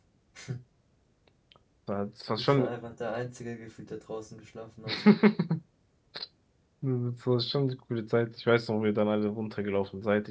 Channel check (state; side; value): identical; both; correlation 1.00